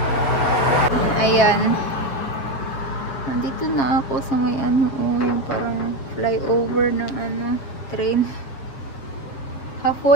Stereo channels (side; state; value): right; late; 7.2 ms